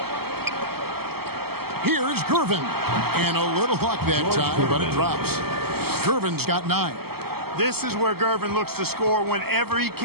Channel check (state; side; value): late; left; 0.96 ms